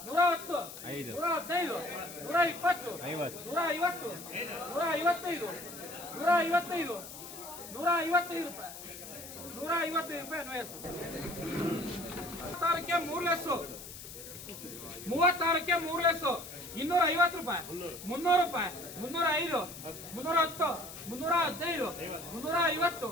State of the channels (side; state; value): left; noise; hiss, 13 dB below the sound